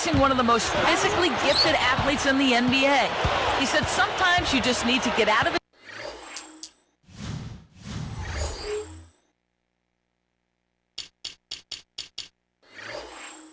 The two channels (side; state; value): both; identical; correlation 1.00